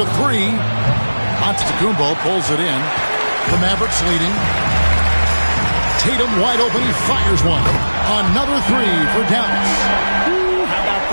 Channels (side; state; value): both; inverted; correlation -1.00